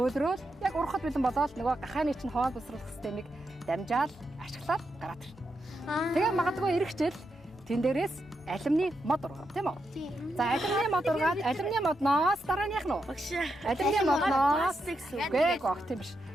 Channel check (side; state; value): both; normal; correlation 0.84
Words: яг урахад бэлэн болоод нөгөө гахааны чинь хоол босруулах системийг дамжаал ашиглаад гараад ирнэ. Тэгээ магадгүй эргэжэл тэн дээрээс алимны мод ургав тийм үү? За алимны мод ургаад алимны модноос дараа нь яах нь вэ? Алимны модноос гээ гох тийм биш.